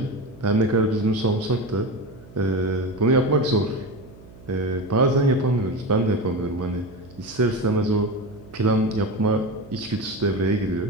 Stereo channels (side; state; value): right; noise; hum, 21 dB below the sound